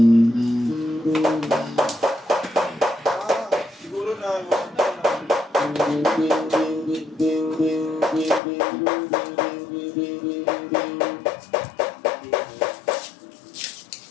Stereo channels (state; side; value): drops out; right; at 8.4 s